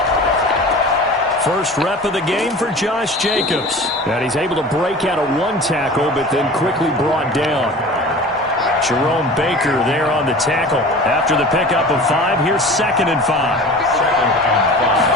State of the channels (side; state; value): both; normal; correlation 0.38